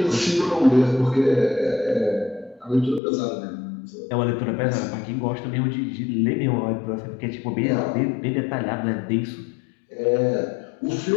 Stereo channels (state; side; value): drops out; right; at 3.0 s